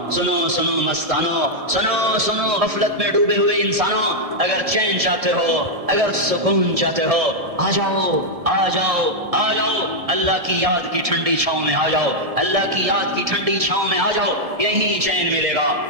سنو سنو مستانو، سنو سنو غفلت میں ڈوبے ہوئے انسانوں، اگر چین چاہتے ہو، اگر سکون چاہتے ہو، آ جاؤ آ جاؤ آ جاؤ، اللہ کی یاد کی ٹھنڈی چھاؤں میں آ جاؤ، اللہ کی یاد کی ٹھنڈی چھاؤں میں آ جاؤ، یہی چین ملے گا،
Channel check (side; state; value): left; late; 1.7 ms